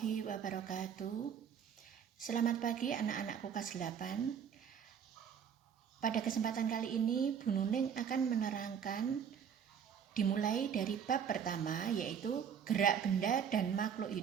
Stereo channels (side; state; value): left; quieter; 7.7 dB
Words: wabarakatuh. Selamat pagi anak-anakku kelas 8. Pada kesempatan kali ini Bu Nuning akan menerangkan dimulai dari bab pertama, yaitu gerak benda dan makhluk